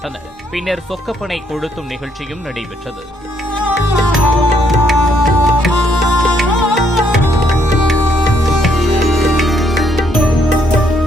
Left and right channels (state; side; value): normal; both; correlation 0.71